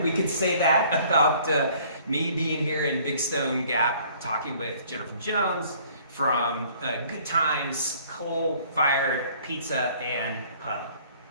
we could say that about me being here in Big Stone Gap talking with Jennifer Jones from Good Times, coal-fired pizza and pub.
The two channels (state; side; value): inverted; both; correlation -0.56